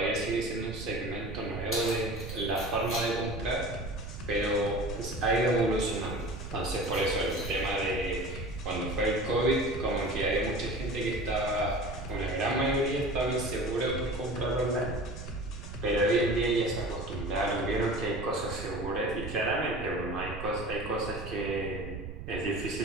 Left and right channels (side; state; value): right; noise; rumble, 9 dB below the sound